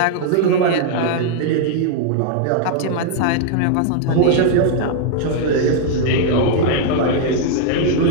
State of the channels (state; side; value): different; both; correlation -0.01